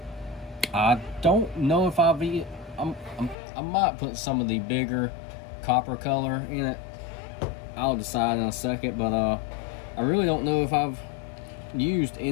don't know if I might put some of the bigger copper color in it. I'll decide in a second, but I really don't know if I've used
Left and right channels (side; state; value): right; drops out; at 3.4 s